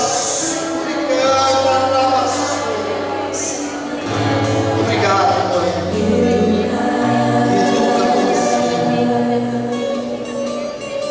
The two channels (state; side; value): identical; both; correlation 1.00